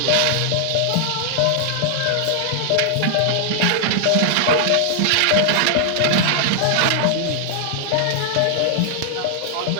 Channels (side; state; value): both; different; correlation -0.01